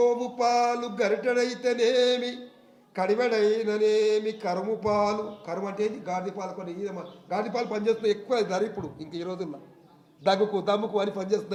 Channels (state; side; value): identical; both; correlation 1.00